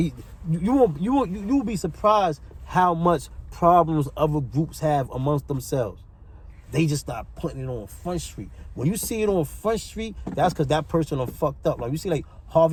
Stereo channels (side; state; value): both; identical; correlation 1.00